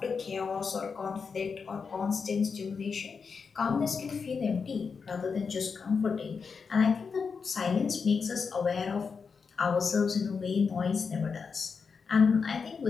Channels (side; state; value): right; quieter; 5.5 dB